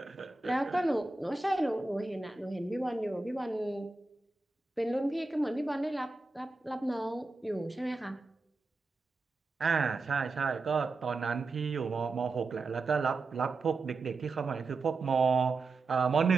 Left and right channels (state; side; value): quieter; left; 3.7 dB